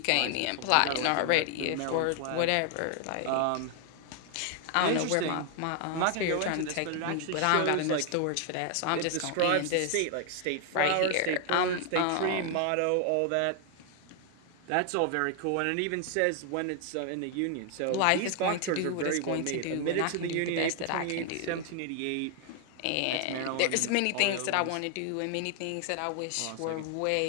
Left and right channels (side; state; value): both; different; correlation 0.00